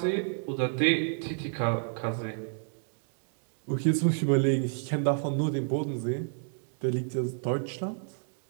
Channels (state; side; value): silent; left; digital silence